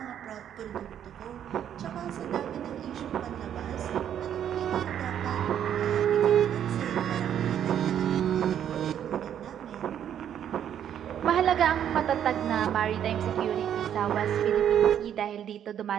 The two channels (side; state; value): left; quieter; 9.7 dB